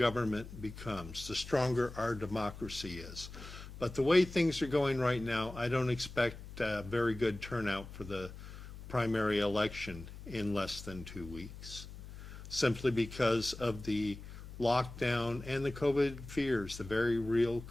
becomes, the stronger our democracy is. But the way things are going right now, I don't expect a very good turnout for the primary election in less than 2 weeks, simply because of the lockdown and the COVID fears, the very real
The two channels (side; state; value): left; noise; hum, 13 dB below the sound